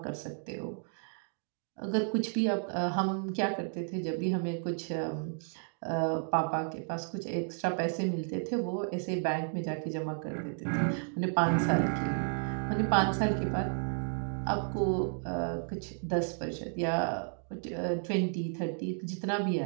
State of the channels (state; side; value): silent; left; 56 dB below the other